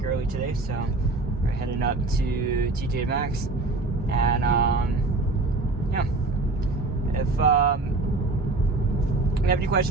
early today, so we're heading up to TJ Maxx. And yeah, if you have any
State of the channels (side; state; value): left; quieter; 3.3 dB